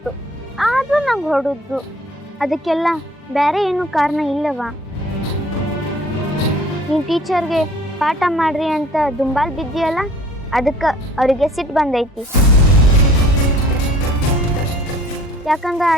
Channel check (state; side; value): normal; both; correlation 0.52